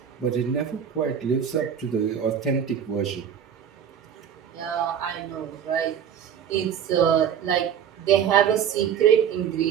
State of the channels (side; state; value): left; quieter; 8.5 dB